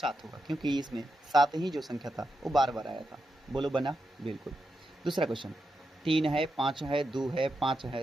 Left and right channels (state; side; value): normal; both; correlation 0.87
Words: होगा, क्योंकि इसमें 7 ही जो संख्या था वो बार बार आया था। बोलो बना? बिल्कुल। दूसरा क्वेश्चन, 3 है 5 है 2 है 5